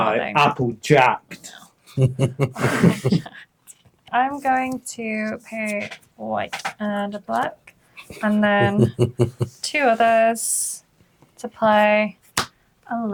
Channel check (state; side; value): identical; both; correlation 1.00